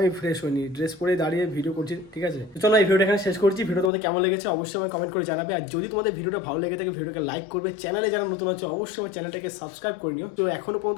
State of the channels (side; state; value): right; drops out; at 3.9 s